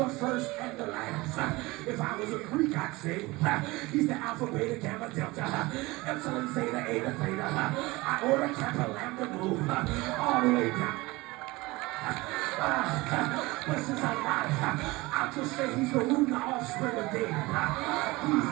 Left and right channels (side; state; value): left; quieter; 21.7 dB